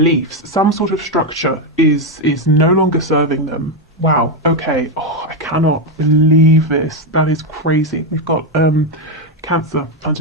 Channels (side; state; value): both; normal; correlation 0.06